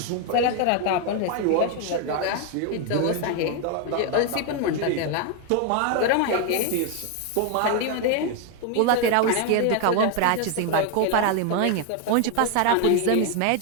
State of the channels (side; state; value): both; different; correlation 0.01